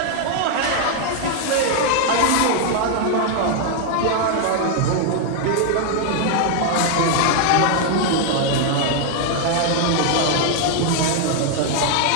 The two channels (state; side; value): different; both; correlation 0.00